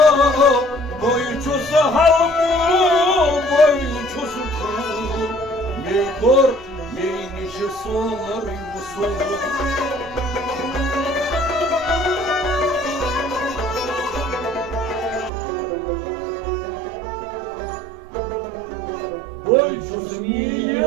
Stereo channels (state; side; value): drops out; left; at 15.3 s